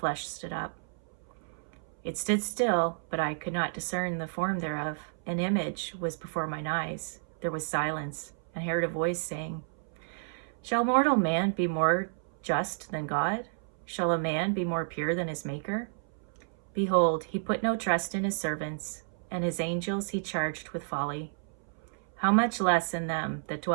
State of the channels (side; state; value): left; silent; 57 dB below the other